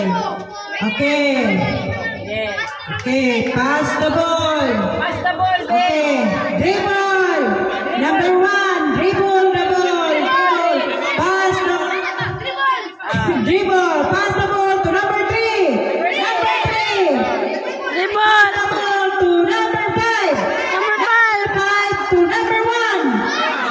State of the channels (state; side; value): identical; both; correlation 1.00